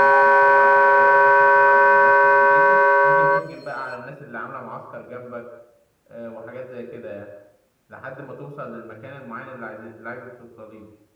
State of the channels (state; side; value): identical; both; correlation 1.00